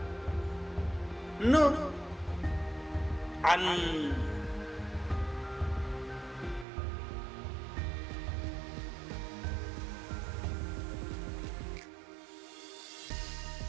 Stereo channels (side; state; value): left; drops out; at 6.7 s